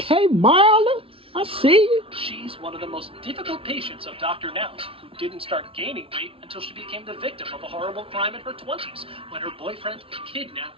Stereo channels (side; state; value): left; late; 0.26 ms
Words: Marla, I see you. She's one of the most difficult patients of Dr. Now's, who didn't start gaining weight until she became the victim of a horrible crime in her 20s when her boyfriend